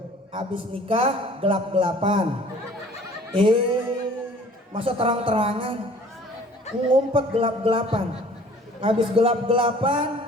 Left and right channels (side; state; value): both; normal; correlation 0.51